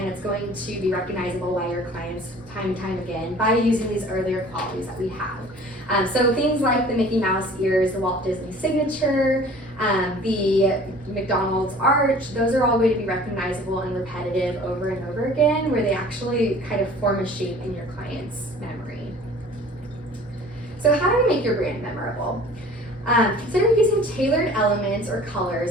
it's going to be recognizable by your clients time and time again by using these earlier qualities that we have. So things like the Mickey Mouse ears, the Walt Disney signature, the McDonald's arch, those are all going to be recognizable and repetitive over and over again, where they actually kind of form a shape in your client's memory. So how do you make your brand memorable? Consider using tailored elements or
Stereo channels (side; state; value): both; normal; correlation 0.47